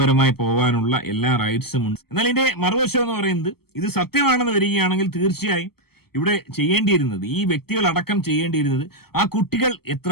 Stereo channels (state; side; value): late; right; 0.95 ms